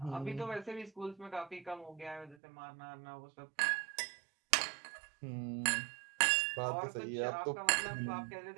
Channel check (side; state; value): left; drops out; at 2.4 s